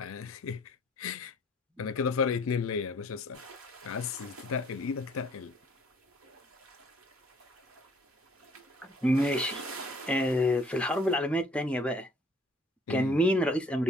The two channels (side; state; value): both; normal; correlation 0.58